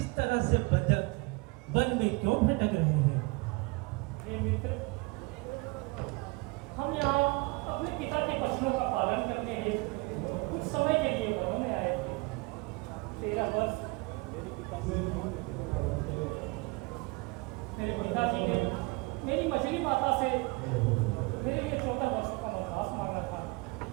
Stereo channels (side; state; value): left; quieter; 25.9 dB